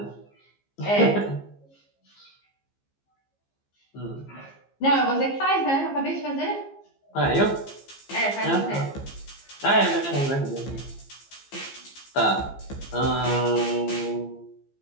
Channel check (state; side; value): late; right; 15 ms